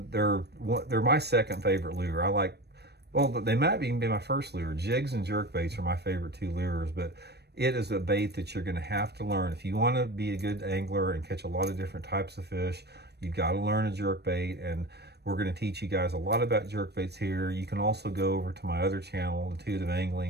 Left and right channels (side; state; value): left; late; 0.48 ms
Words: my second favorite lure. Well, they might even be my first lure. Jigs and jerkbaits are my favorite two lures, but it is a bait that you're going to have to learn. If you want to be a good angler and catch a lot of different types of fish, you've got to learn a jerkbait, and we're going to teach you guys a lot about jerkbaits here. You can also go over to my other channel, Intuitive